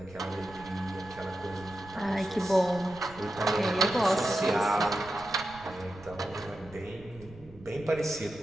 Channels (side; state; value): right; noise; rumble, 20 dB below the sound